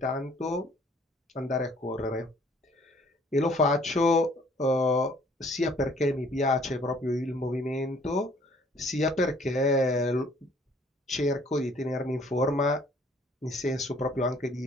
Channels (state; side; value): normal; both; correlation 0.59